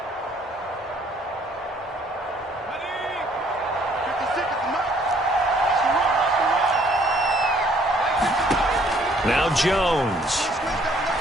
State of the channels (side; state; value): both; normal; correlation 0.62